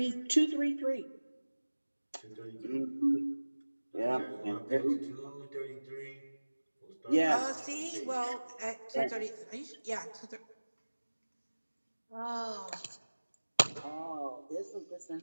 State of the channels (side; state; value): both; inverted; correlation -1.00